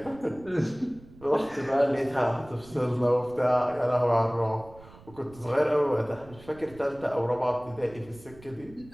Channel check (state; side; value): noise; right; rumble, 22 dB below the sound